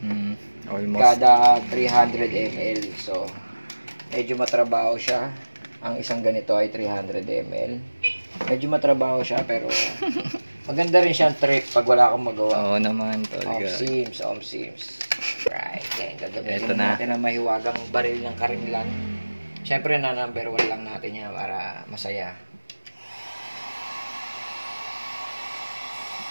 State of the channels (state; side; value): inverted; both; correlation -1.00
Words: Almost. Kada 300 ml. So, medyo matrabaho siya. Ang isang ganito ay 300 ml. Medyo matrabaho siya, pero maganda rin siyang trick pag wala akong magawa. Oo naman talaga. Om sims. Right. Then, gagamitin Ito na. natin ang mahiwagang baril ng karinilan. Siyempre na number 1 lang natin yan para masaya.